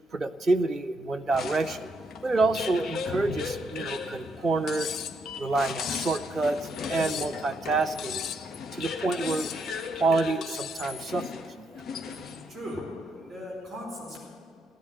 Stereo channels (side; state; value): both; normal; correlation 0.77